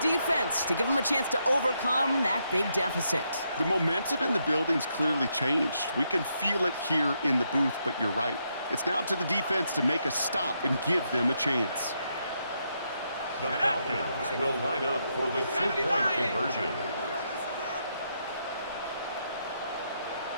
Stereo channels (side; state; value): both; inverted; correlation -0.79